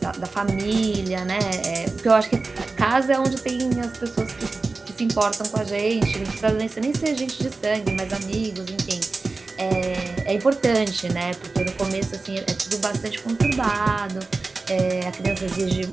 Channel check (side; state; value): left; quieter; 3.7 dB